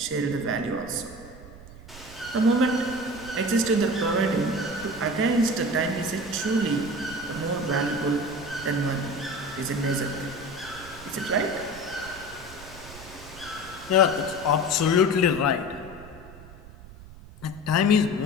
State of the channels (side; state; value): right; noise; rumble, 18 dB below the sound